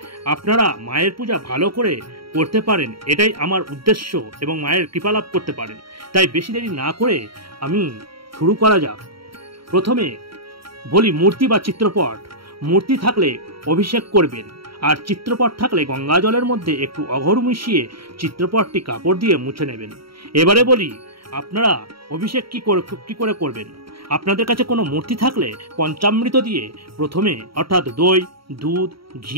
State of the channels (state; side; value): late; left; 0.75 ms